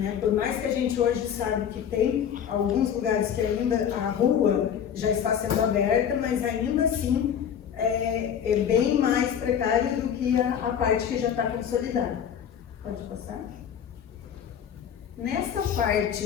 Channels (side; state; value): right; quieter; 8.6 dB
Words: Por mais que a gente hoje sabe que tem alguns lugares que ainda a rua já está sendo aberta, mas ainda assim é bem mais precário do que a parte que já está consolidada. Pode passar? Nessa